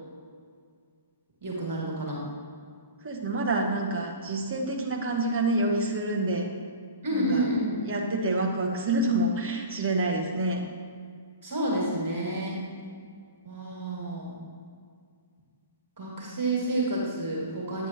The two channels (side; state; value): both; inverted; correlation -0.32